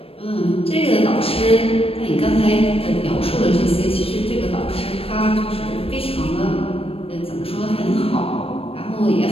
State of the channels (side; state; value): right; late; 0.28 ms